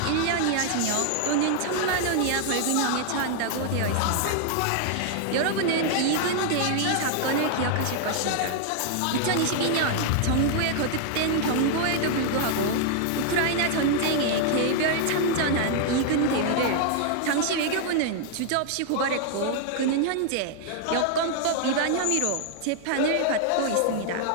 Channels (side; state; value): both; different; correlation 0.00